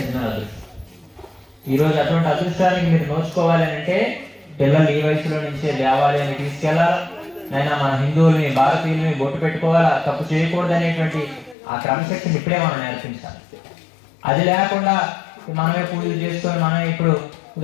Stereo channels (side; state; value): right; drops out; at 11.6 s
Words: అదృష్టం. ఈరోజు అటువంటి అదృష్టానికి మీరు నోచుకోవాలి అంటే పిల్లలు ఈ వయసులో నుంచే దేవాలయాన్ని తీసుకెళ్లాలా. నైనా మన హిందువుల్ని, భారతీయుల్ని బొట్టు పెట్టుకోవాలా, తప్పు చేయకూడదు అనేటువంటి ఆ క్రమశక్తిని ఇప్పుడే మనం నేర్పించాలి. అది లేకుండా మనమే పూజలు చేసుకొని మనమే ఇప్పుడు